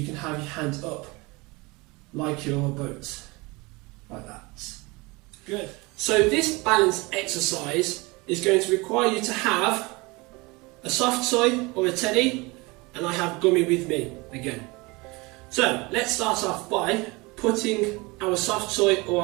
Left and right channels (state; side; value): quieter; left; 24.9 dB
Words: can have your hands up like your boat, like that. Good. So this balance exercise is going to require you to have a soft toy or a teddy, and I have gummy with me again. So let's start off by putting our soft toy or